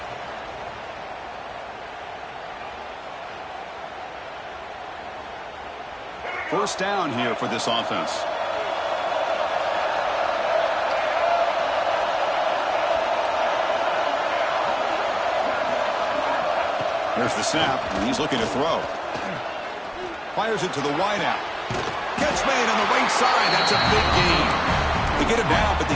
First down here for this offense. Here's the snap, and he's looking to throw. Fires it to the wideout. Catch made on the right side. That's a big gain. They get him down, but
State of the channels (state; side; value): identical; both; correlation 1.00